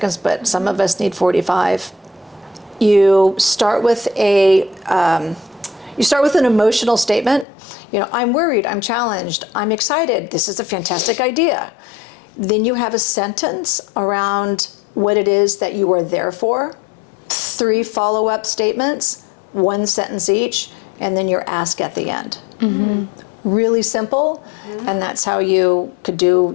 but some of us need 45. You start with an emotional statement. I'm worried, I'm challenged, I'm excited, this is a fantastic idea. Then you have a sentence around what it is that you are there for. 3 follow-up statements, 1 sentence each, and then your ask at the end. Really simple, and that's how you could do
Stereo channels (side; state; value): right; drops out; at 7.5 s